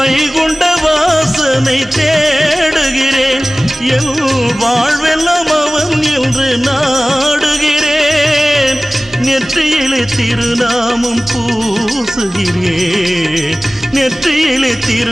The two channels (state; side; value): normal; both; correlation 0.98